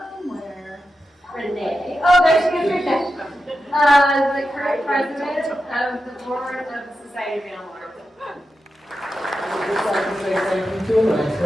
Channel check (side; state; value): both; normal; correlation 0.90